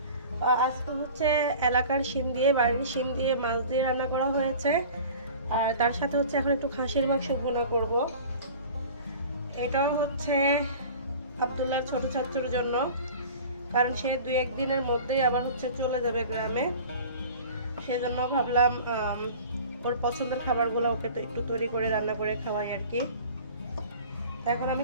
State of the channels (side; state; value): both; inverted; correlation -0.42